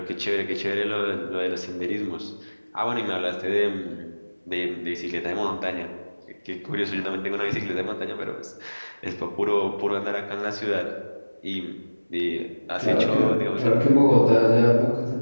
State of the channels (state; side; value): inverted; both; correlation -1.00